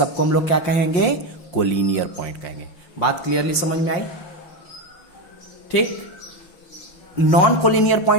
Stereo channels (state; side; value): late; right; 5.6 ms